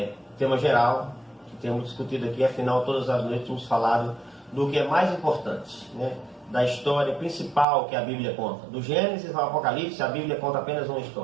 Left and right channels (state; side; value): drops out; left; at 7.7 s